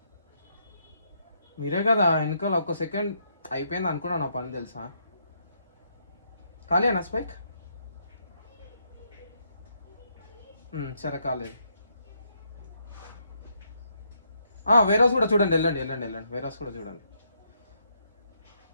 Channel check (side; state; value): both; inverted; correlation -0.75